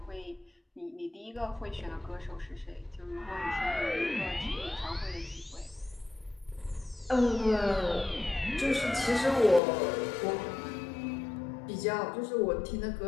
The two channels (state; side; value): drops out; right; at 9.6 s